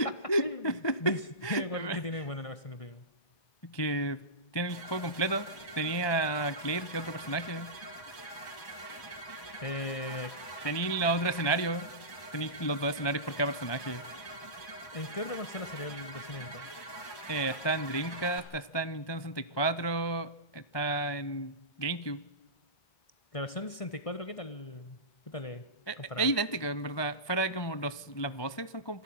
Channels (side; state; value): right; late; 1.2 ms